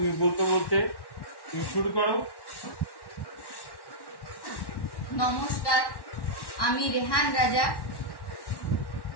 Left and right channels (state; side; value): late; right; 1.1 ms